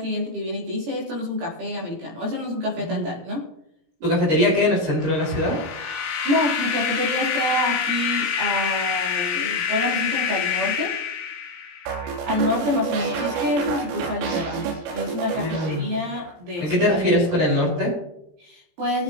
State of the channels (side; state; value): left; late; 17 ms